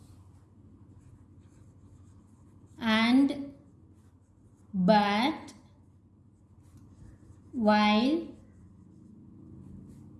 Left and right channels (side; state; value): both; identical; correlation 1.00